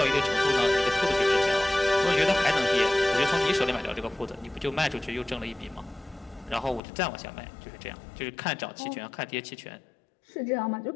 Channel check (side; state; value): right; drops out; at 6.8 s